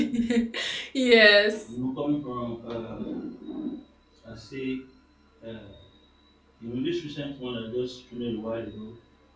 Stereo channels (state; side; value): identical; both; correlation 1.00